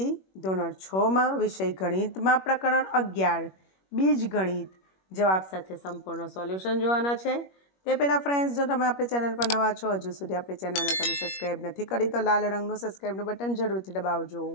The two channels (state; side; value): late; right; 21 ms